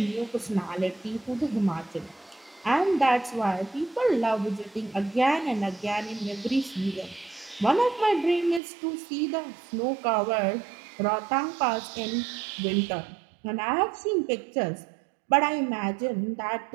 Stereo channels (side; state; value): left; drops out; at 8.6 s